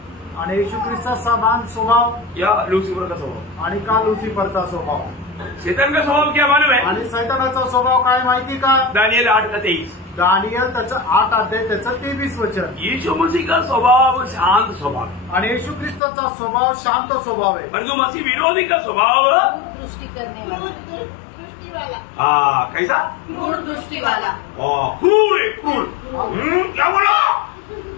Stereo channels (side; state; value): right; drops out; at 16.0 s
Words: आणि येशू ख्रिस्ता समान स्वभाव या लूसीफर का स्वभाव, आणि का लुसिफरचा स्वभाव। शैतान का स्वभाव क्या मालूम है, आणि सैतानाचा स्वभाव काय माहिती का? दानियल 8 का 23। दानियल त्याचं 8 अध्याय त्याचं 23 वचन। यीशु मसीह का स्वभाव शांत स्वभाव, आणि येशू ख्रिस्ताचा स्वभाव शांत स्वभाव आहे। परंतु मसीह विरोधी का स्वभाव दृष्टि करने वाला, दृष्टि वाला, कैसा, क्रूर दृष्टि वाला, क्रूर है, क्रूर। क्या बोला,